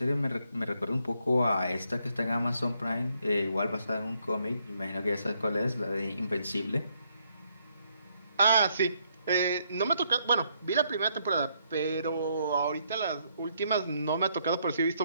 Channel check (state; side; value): inverted; both; correlation -0.73